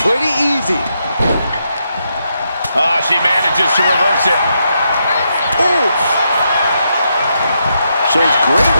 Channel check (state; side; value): inverted; both; correlation -0.81